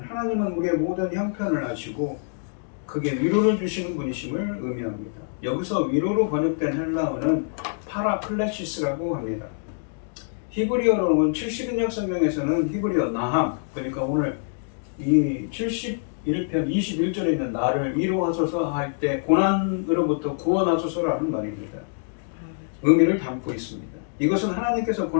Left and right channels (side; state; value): right; silent; digital silence